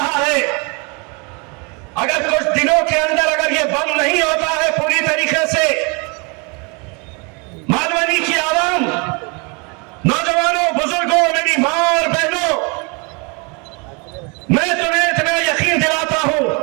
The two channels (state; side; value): quieter; left; 31.8 dB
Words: है। अगर कुछ दिनों के अंदर अगर ये बंद नहीं होता है पूरी तरीके से, मालवनी की आवाम, नौजवानों, बुजुर्गों, मेरी मां और बहनों, मैं तुम्हें इतना यकीन दिलाता हूं,